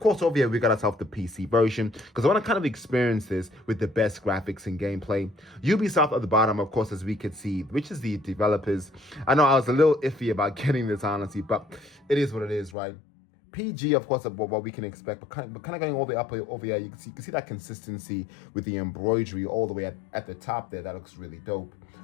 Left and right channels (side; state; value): right; drops out; at 12.8 s